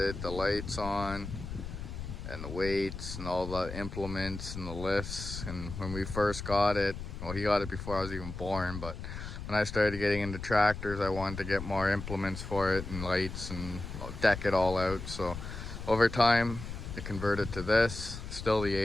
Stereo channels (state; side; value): noise; left; rumble, 8 dB below the sound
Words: the lights on and the weights and all the implements and the lifts. And when we first got it, well, he got it before I was even born, but when I started getting into tractors, I wanted to get more implements for it and lights and deck it all out. So over time, I converted to this. Still the